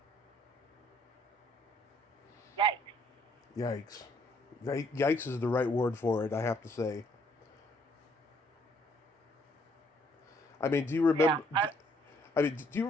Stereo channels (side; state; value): both; normal; correlation 0.66